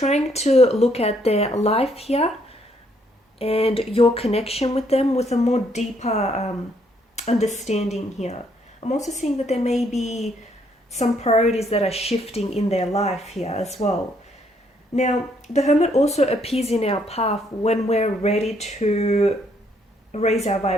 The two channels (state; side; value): normal; both; correlation 0.70